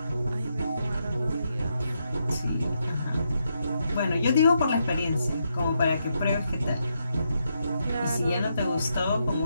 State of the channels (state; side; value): inverted; both; correlation -0.80